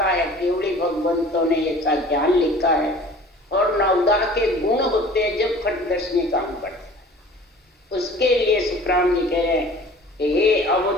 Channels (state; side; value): normal; both; correlation 0.46